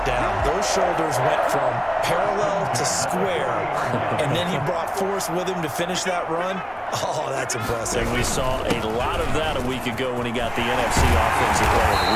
down. Those shoulders went from parallel to square, and then he brought force with him to finish that run. Oh, that's impressive. And we saw a lot of that a week ago when he got the NFC Offensive Player of the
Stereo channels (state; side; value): identical; both; correlation 1.00